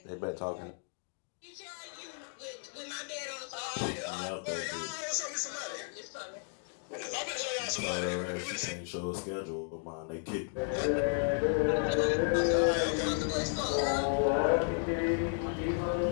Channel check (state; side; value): silent; right; 55 dB below the other